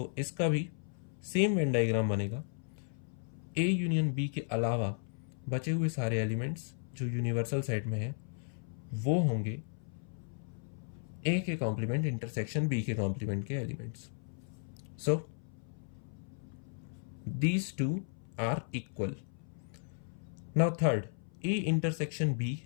इसका भी सेम वेन डायग्राम बनेगा। ए यूनियन बी के अलावा बचे हुए सारे एलिमेंट्स जो यूनिवर्सल सेट में है वो होंगे ए के कॉम्प्लीमेंट इंटरसेक्शन बी के कॉम्प्लीमेंट के elements. So these two are equal. Now third, A intersection B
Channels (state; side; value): silent; right; 54 dB below the other